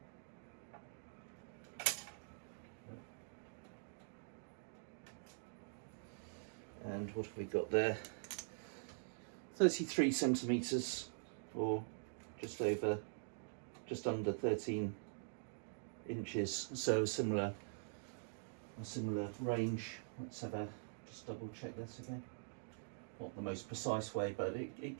And what have we got there? 33 centimetres, or just under 13 inches. So a similar range. Let's just double check this again. Not the most precise way, but it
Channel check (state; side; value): silent; left; digital silence